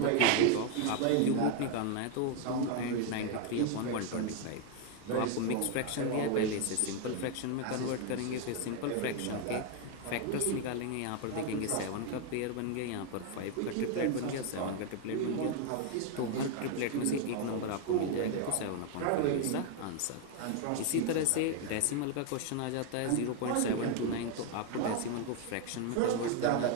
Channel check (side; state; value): both; different; correlation 0.01